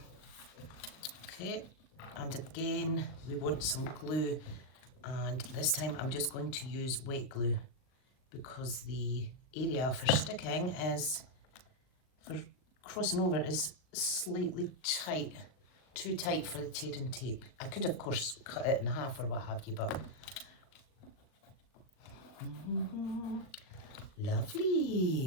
okay, and again, we want some glue, and this time I'm just going to use wet glue because the area for sticking is, for crossing over, is slightly tight, too tight for the tearing tape. I could of course cut it in half or what have you, but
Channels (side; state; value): right; late; 38 ms